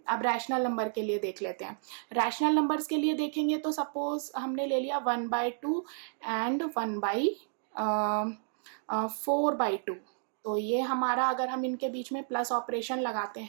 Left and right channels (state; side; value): silent; left; digital silence